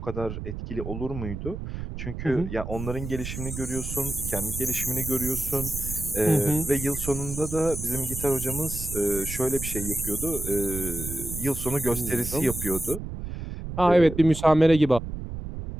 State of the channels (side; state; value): right; noise; rumble, 7 dB below the sound